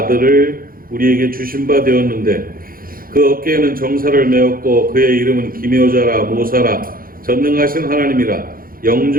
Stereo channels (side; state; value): left; late; 0.42 ms